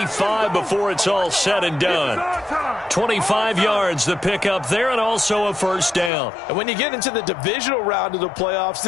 before it's all said and done. 25 yards to pick up there, and also a first down. And when you get into the divisional round of the playoffs,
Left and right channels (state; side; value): drops out; right; at 6.1 s